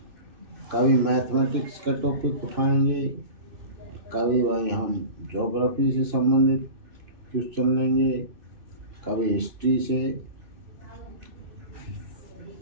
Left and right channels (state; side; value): late; left; 2.9 ms